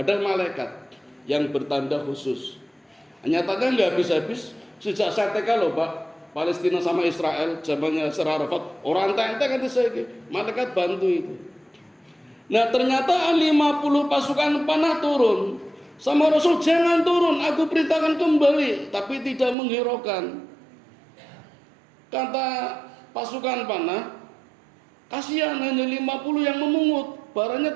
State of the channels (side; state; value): left; drops out; at 19.6 s